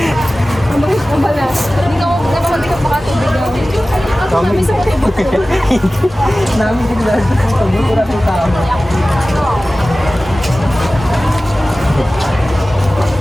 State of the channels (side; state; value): both; normal; correlation 0.96